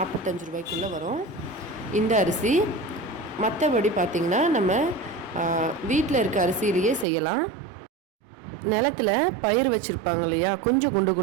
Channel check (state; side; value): drops out; left; at 7.1 s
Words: ரூபாய்க்குள்ளே வரும் இந்த அரிசி. மற்றபடி பார்த்திங்கன்னா நம்ம வீட்டில் இருக்க அரிசியிலேயே செய்யலாம். நிலத்தில் பயிர் வச்சுருப்பாங்க இல்லையா, கொஞ்சம்